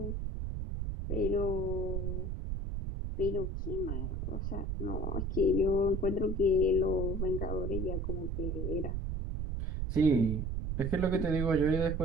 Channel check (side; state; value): right; noise; rumble, 2 dB below the sound